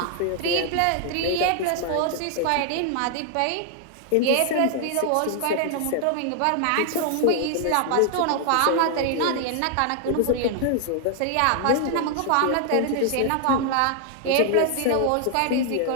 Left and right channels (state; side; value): different; both; correlation 0.00